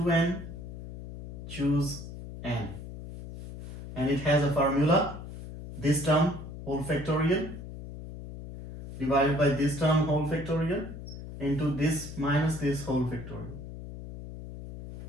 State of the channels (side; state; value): left; noise; hum, 11 dB below the sound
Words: choose n. And it has a formula. This term whole factorial divided by this term whole factorial into this minus this whole factorial.